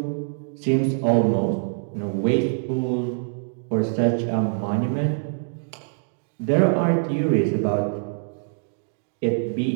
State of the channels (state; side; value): silent; left; digital silence